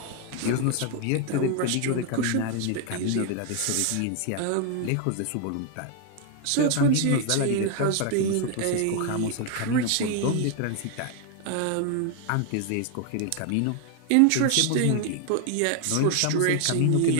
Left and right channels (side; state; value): both; different; correlation 0.00